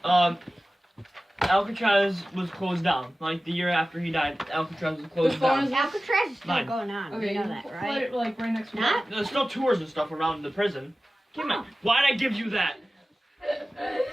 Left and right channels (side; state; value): both; normal; correlation 0.96